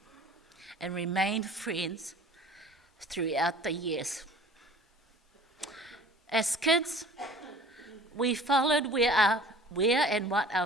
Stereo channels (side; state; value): both; normal; correlation 0.46